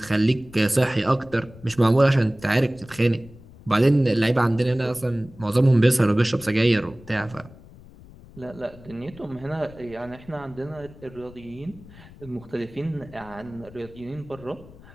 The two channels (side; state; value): left; noise; rumble, 21 dB below the sound